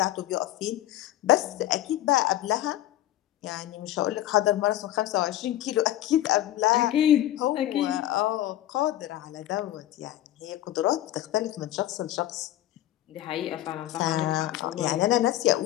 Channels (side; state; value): right; quieter; 13.9 dB